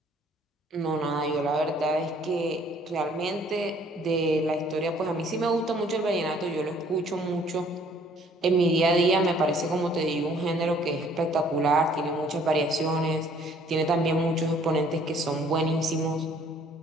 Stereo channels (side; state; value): both; normal; correlation 0.59